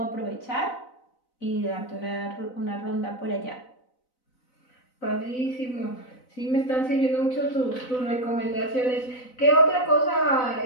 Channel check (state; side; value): late; right; 4.0 ms